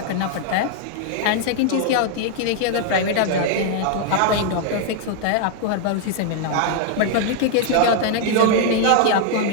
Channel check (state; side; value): different; both; correlation 0.00